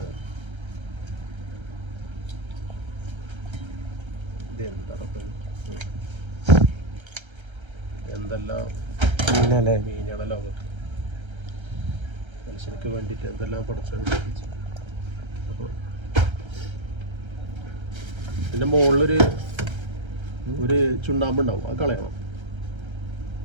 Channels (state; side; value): late; left; 1.3 ms